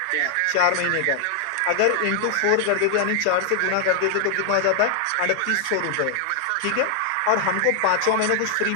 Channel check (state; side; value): different; both; correlation 0.00